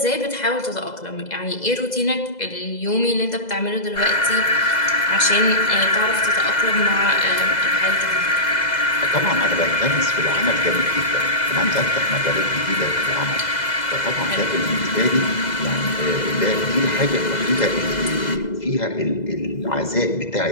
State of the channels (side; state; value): right; late; 2.0 ms